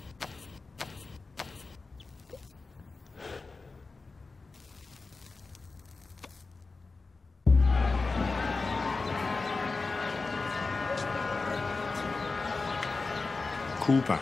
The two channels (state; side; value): quieter; right; 3.9 dB